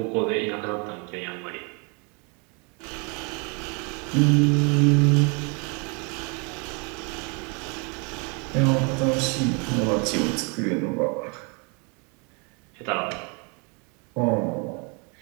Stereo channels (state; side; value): quieter; left; 33.4 dB